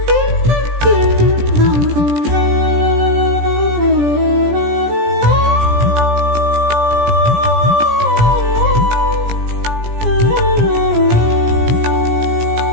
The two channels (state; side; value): late; left; 17 ms